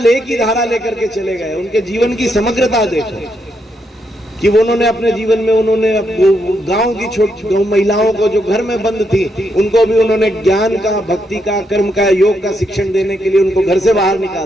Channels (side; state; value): both; normal; correlation 0.79